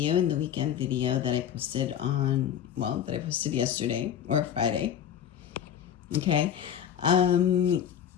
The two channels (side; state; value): right; quieter; 9.4 dB